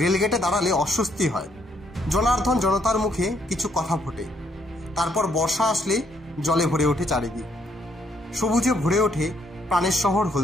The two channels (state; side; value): normal; both; correlation 0.71